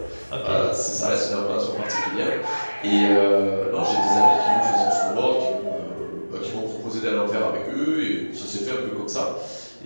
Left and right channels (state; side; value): inverted; both; correlation -1.00